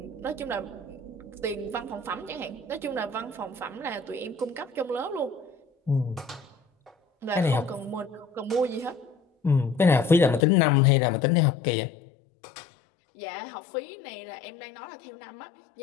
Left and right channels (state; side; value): drops out; right; at 10.5 s